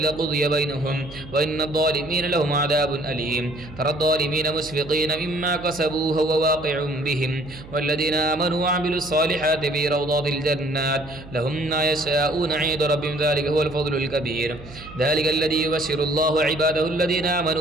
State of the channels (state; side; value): noise; right; hum, 17 dB below the sound